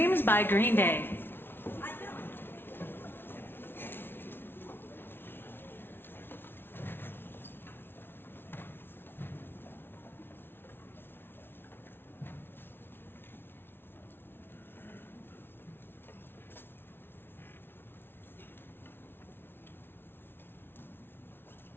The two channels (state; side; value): late; right; 0.11 ms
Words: by Green Day.